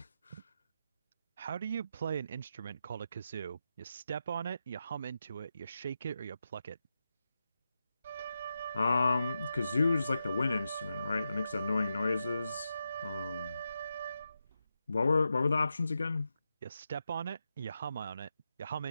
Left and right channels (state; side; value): inverted; both; correlation -0.87